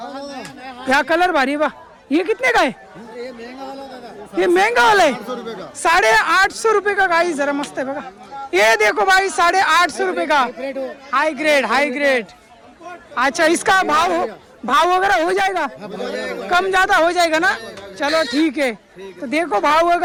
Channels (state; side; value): identical; both; correlation 1.00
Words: क्या कलर भारी बा. ये कितने का है? ये महंगा वाला है. 850 रुपये का गाइस. जरा मस्त है बघा. ये देखो भाई 850 रुपये का हाई ग्रेड, हाई ग्रेड. अच्छा, इसका भाव वगैरह हो जाएगा? कम ज्यादा हो जाएगा ना? चलो ठीक है. तो देखो भाव